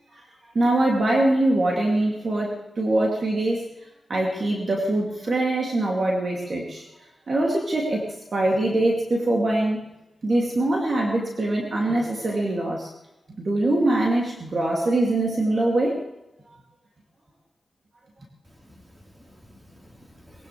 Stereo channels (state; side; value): normal; both; correlation 0.91